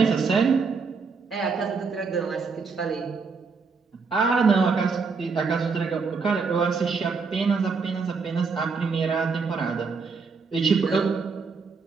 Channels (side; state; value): left; quieter; 4.9 dB